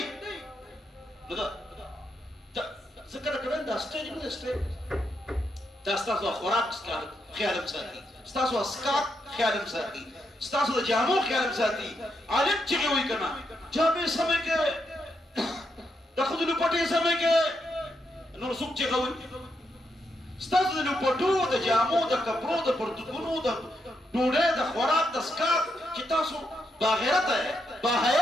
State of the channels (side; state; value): both; normal; correlation 0.81